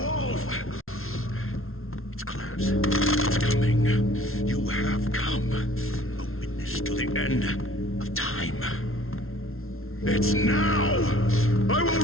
wolf! It's close. It's coming. You have come. A witness to the end of time. It's now! I will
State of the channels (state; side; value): late; right; 0.62 ms